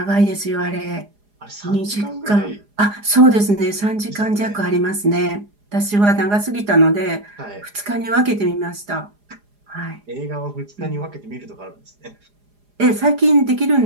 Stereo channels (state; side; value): late; left; 4.9 ms